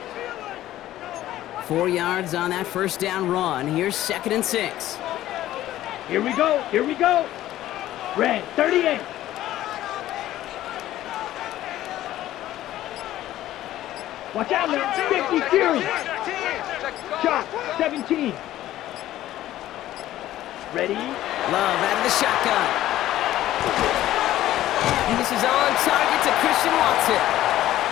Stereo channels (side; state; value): right; quieter; 14.0 dB